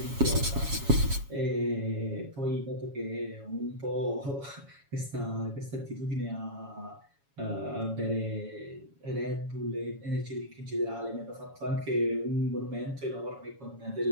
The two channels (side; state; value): left; late; 7.2 ms